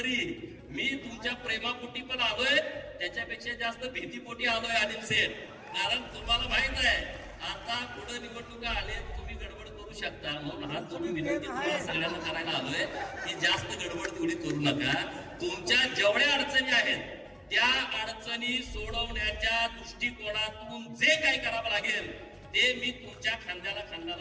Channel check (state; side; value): identical; both; correlation 1.00